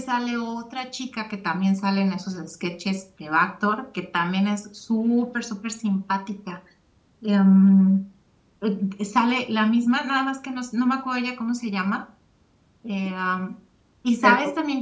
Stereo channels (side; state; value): both; identical; correlation 1.00